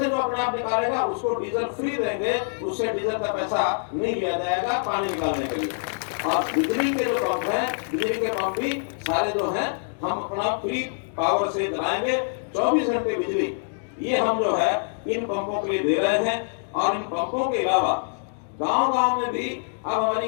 जो अपने आप निकालेगा उसको डीजल फ्री देंगे, उससे डीजल का पैसा नहीं लिया जाएगा पानी निकालने के लिए। और बिजली के जो पंप हैं, बिजली के पंप भी सारे जो हैं हम अपना फ्री पावर से चलाएंगे। 24 घंटे बिजली ये हम जो है इन पंपों के लिए दे रहे हैं। और इन पंपों के अलावा गांव-गांव में भी अब हमारी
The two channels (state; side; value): silent; right; digital silence